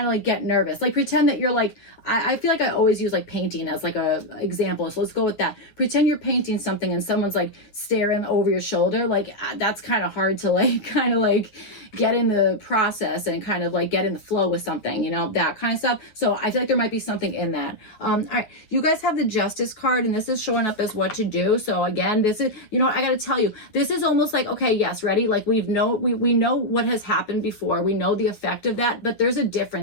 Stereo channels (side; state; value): right; late; 9.4 ms